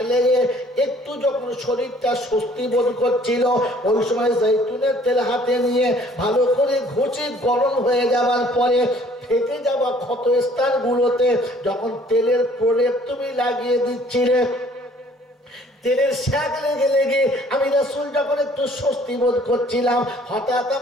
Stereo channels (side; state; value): both; normal; correlation 0.57